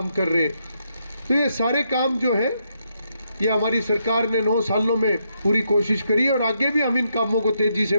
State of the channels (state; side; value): inverted; both; correlation -0.79